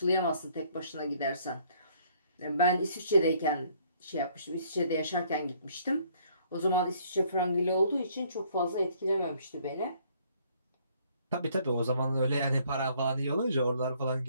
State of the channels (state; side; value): inverted; both; correlation -0.63